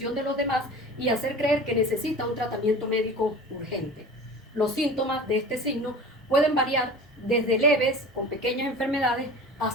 de los demás y hacer creer que necesita un tratamiento médico urgente. Los síntomas de este signo pueden variar desde leves, con pequeñas enfermedades,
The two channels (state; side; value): normal; both; correlation 0.37